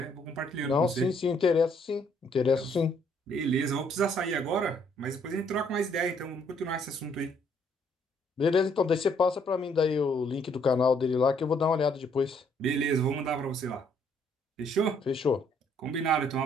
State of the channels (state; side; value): normal; both; correlation 0.67